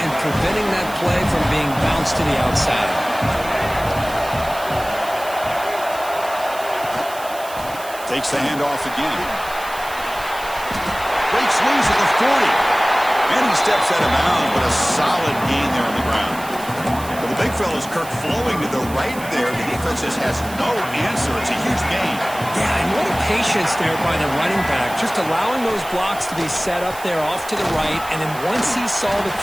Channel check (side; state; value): right; noise; hiss, 15 dB below the sound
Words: preventing that play from being bounced to the outside. Takes the handoff again. Breaks loose at the 40. And he steps out of bounds, but a solid gain there on the ground. But the big fella's Kirk flowing to the right there. The defense just has no answer. It's a huge gain. Yeah, and what a patience there by the running back, just allowing those blocks to be set up there off to the right, and then once he saw the